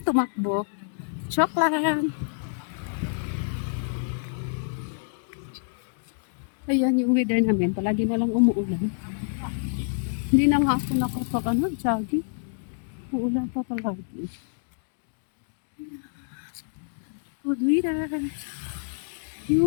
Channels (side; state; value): right; silent; digital silence